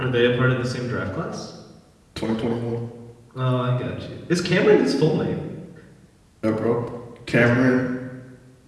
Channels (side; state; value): both; identical; correlation 1.00